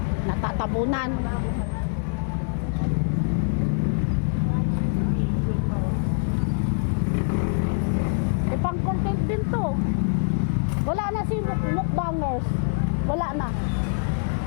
natatabunan. Pang content din to. Wala na si mukbangers. Wala na.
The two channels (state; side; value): silent; right; digital silence